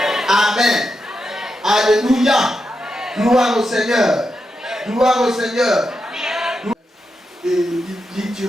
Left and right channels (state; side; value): normal; both; correlation 0.86